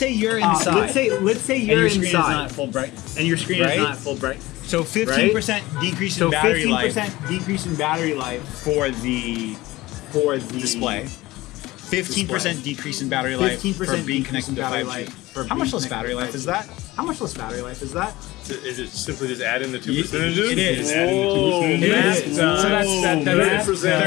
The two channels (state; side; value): quieter; right; 18.9 dB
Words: you're inside. Let's say and your screen inside. is not full brightness. And your screen is not full brightness. So 15% decrease in battery life 15% decrease in battery life for the display. 15% decrease in battery life for being connected to 5G. How much less battery life is that? Is it simply just adding the 2 percentages? It is. So that's